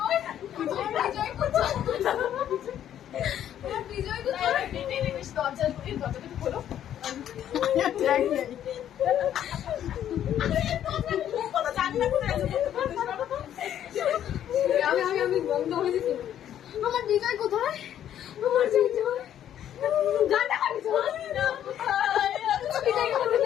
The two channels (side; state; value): right; quieter; 10.6 dB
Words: বিজয় কোথায়? বিজয় কোথায়? দরজাটা খোলো। আমি বন্ধ হয়ে গেছি। আমার বিজয় কোথায়? আমার বিজয় গানটা বিজয়